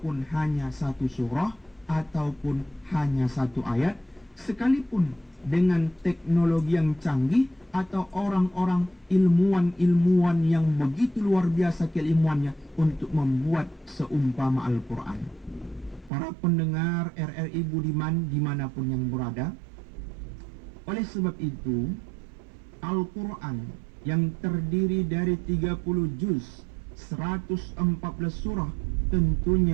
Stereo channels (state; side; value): drops out; left; at 16.1 s